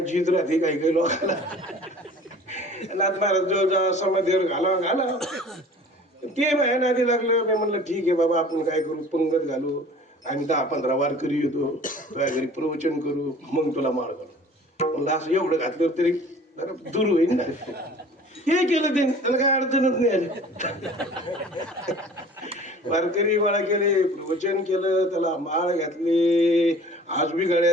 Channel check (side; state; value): both; normal; correlation 0.46